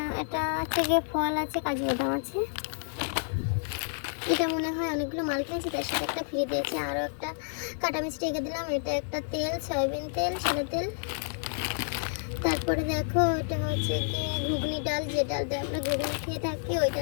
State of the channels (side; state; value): right; silent; digital silence